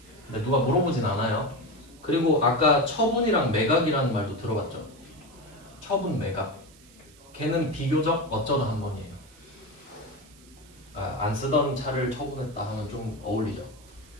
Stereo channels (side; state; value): right; noise; hiss, 25 dB below the sound